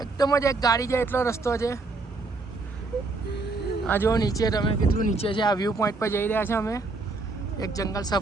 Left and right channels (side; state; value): left; quieter; 3.6 dB